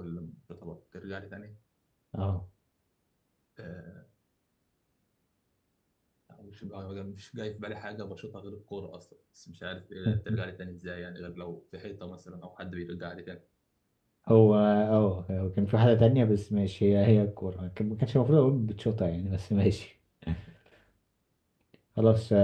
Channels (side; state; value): both; identical; correlation 1.00